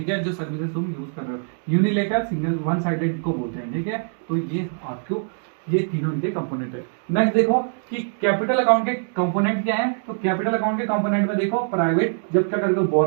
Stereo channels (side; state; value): left; silent; digital silence